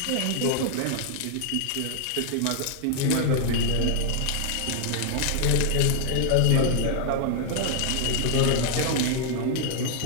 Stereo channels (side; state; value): both; different; correlation 0.00